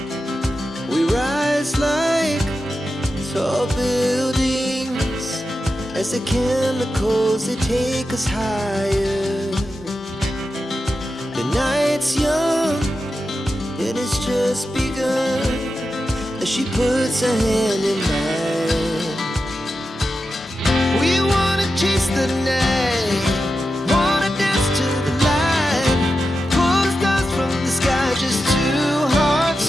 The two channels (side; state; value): both; normal; correlation 0.90